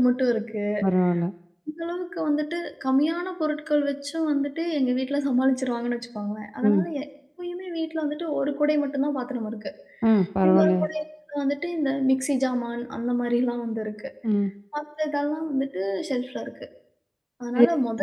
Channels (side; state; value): both; identical; correlation 1.00